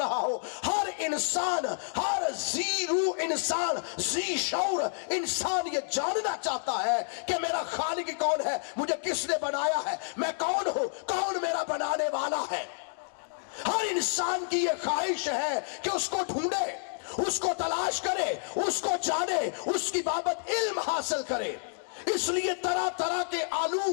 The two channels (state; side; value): silent; right; digital silence